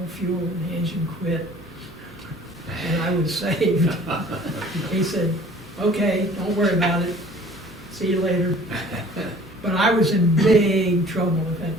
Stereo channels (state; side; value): normal; both; correlation 0.50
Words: fuel and the engine quit. And I was saved. He said, "Okay, don't worry about it. See you later." But I was in big trouble if that